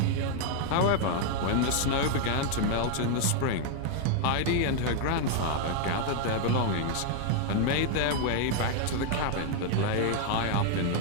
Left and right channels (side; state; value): both; different; correlation 0.00